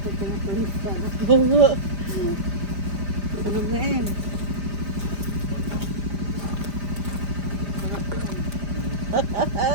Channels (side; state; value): left; late; 5.0 ms